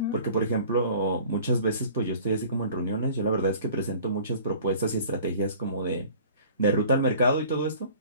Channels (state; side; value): inverted; both; correlation -0.47